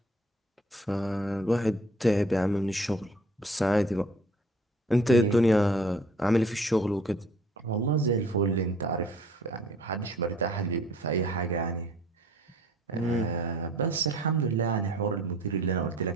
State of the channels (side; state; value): both; normal; correlation 0.53